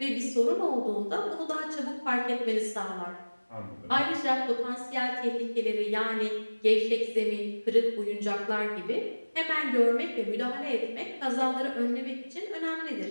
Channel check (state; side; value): inverted; both; correlation -1.00